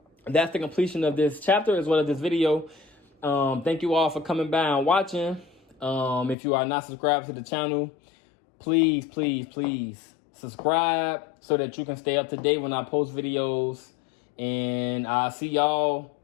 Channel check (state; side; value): drops out; right; at 6.4 s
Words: that's the completion of this chapter as well as this video. Thank you all for coming by and watching. If you are not subscribed to the channel, please subscribe so that you can stay up to date when I post videos. And I'll see y'all